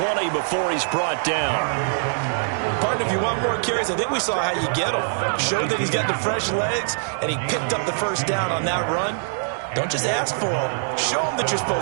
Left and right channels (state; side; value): silent; left; digital silence